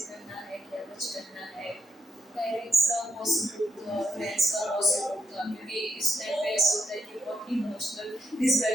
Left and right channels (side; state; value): both; normal; correlation 0.80